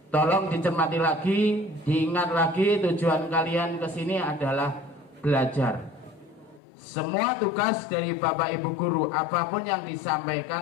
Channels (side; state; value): right; drops out; at 6.6 s